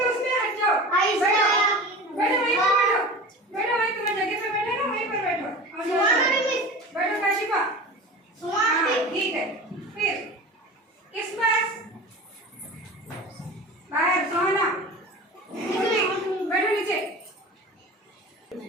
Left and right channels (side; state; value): both; normal; correlation 0.34